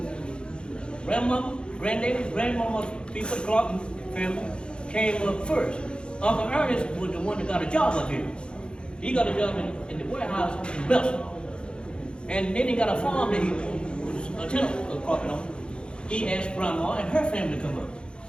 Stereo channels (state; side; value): late; right; 0.053 ms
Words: Grandmama, granddaddy, grandmama, people, the Clarke family, came up first. Uncle Ernest was the one that got a job up here. He got a job in the warehouse in Belson. And then he got a farm that he was a tenant of Clarke on. He asked Grandma and her family to come up.